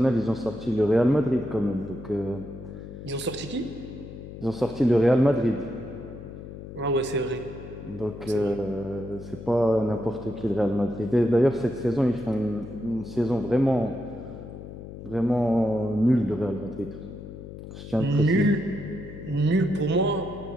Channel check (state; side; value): noise; left; hum, 12 dB below the sound